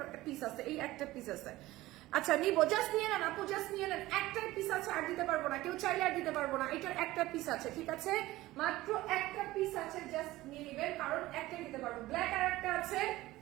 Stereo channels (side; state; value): left; quieter; 17.5 dB